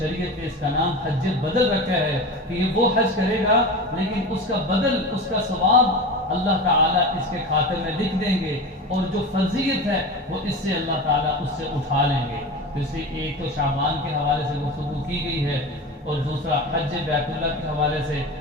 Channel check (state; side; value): normal; both; correlation 0.28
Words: نے اس کا نام حج بدل رکھا ہے کہ یہ وہ حج کرے گا لیکن اس کا بدل، اس کا ثواب اللہ تعالیٰ اس کے خاطر میں لکھ دیں گے، اور جو فرضیت ہے وہ اس سے اللہ تعالیٰ اس سے اٹھا لیں گے. تو اس لیے ایک تو شعبان کے حوالے سے گفتگو کی گئی ہے، اور دوسرا حج بیت اللہ کے حوالے سے